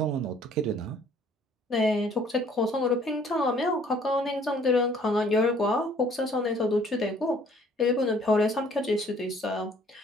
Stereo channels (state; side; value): normal; both; correlation 0.58